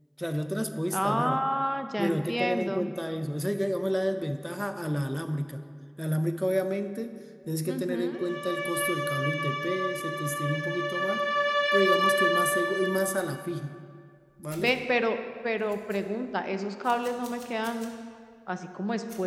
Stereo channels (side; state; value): both; identical; correlation 1.00